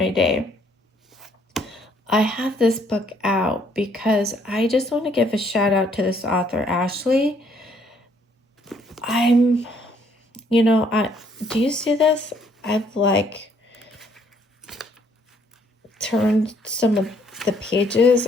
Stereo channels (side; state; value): both; normal; correlation 0.66